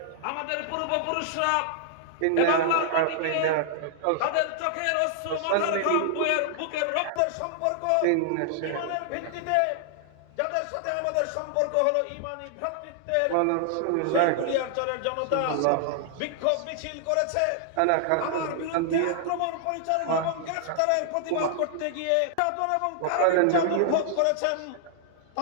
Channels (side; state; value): both; different; correlation -0.01